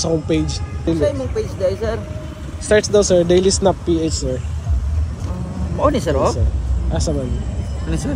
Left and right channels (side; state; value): both; identical; correlation 1.00